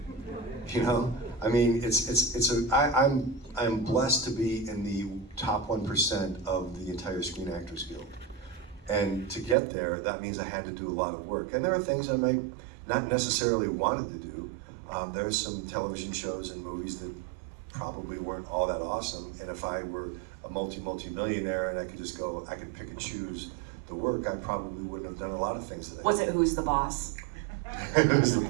You know, I mean, I'm blessed to be in the top 1% of the entire Screen Actors Guild. And to get there, that means I had to do a lot of work. And there are things I might not necessarily wanted to do. There's some television shows and movies that probably weren't all that awesome. And if I were a multi-millionaire and I could pick and choose the work, I probably wouldn't have done a lot of things that I Was did. it Who's the Boss? Who's the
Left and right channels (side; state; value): left; drops out; at 9.6 s